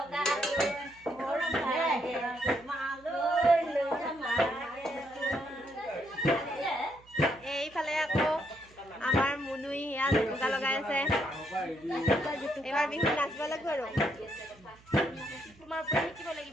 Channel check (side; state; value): right; noise; hum, 26 dB below the sound